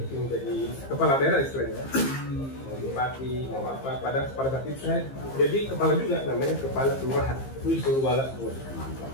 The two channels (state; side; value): late; right; 15 ms